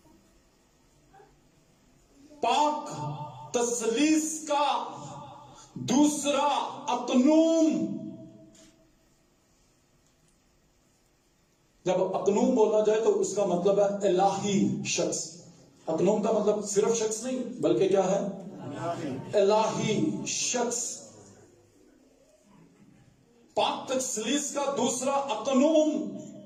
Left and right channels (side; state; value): both; identical; correlation 1.00